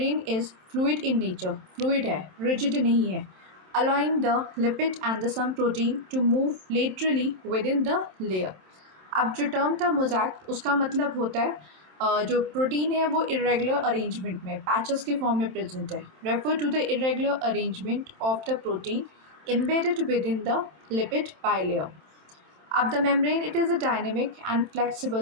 is fluid in nature, fluid है, रिजिड नहीं है, allowing the lipid and the some protein to move laterally within the layer। अब जो टर्म था मोज़ैक उसका मतलब होता है जो प्रोटीन है वो इरेगुलर अरेंजमेंट में पैचेस के फॉर्म में प्रेजेंट है। Refer to the irregular arrangement of the protein embedded within the lipid bilayer। अब the membrane it is a dynamic and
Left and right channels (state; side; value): late; left; 27 ms